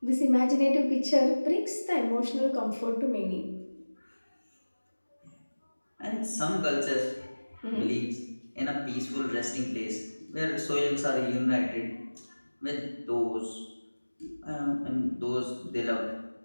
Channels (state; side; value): inverted; both; correlation -1.00